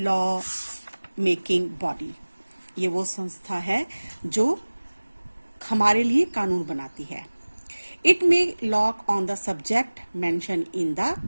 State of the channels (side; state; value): both; inverted; correlation -1.00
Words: law making body. ये वो संस्था है जो हमारे लिए कानून बनाती है. It may law on the subject mentioned in the